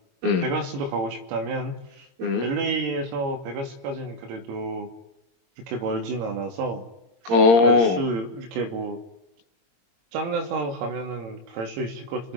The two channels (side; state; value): left; late; 22 ms